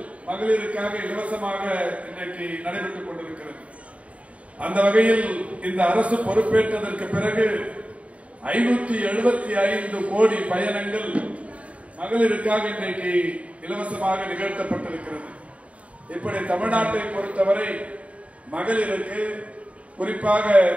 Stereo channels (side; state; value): left; late; 0.065 ms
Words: மகளிருக்காக இலவசமாக இன்றைக்கு நடைபெற்றுக் கொண்டிருக்கிறது. அந்த வகையில் இந்த அரசு பொறுப்பேற்றதற்கு பிறகு 575 கோடி பயணங்கள் மகளிருக்காக இன்றைக்கு இலவசமாக நிகழ்த்தப்பட்டிருக்கிறது. இப்படி தமிழ்நாட்டை பொறுத்தவரை மகளிருக்கு, குறிப்பாக